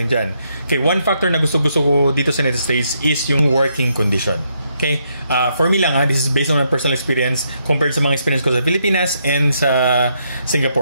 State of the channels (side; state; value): both; inverted; correlation -0.77